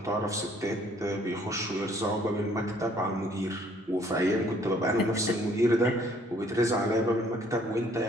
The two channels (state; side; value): normal; both; correlation 0.61